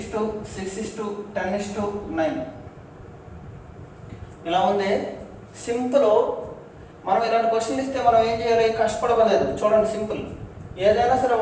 ఇలా ఉంది. సింపుల్. మనం ఇలాంటి క్వశ్చన్ ఇస్తే మనం ఏం చేయాలి? కష్టపడలేదు. చూడండి, సింపుల్. ఏదైనా సరే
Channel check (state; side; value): identical; both; correlation 1.00